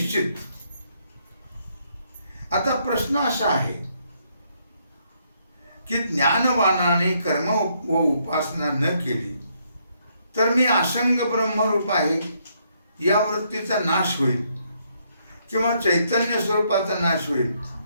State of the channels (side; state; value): both; inverted; correlation -0.73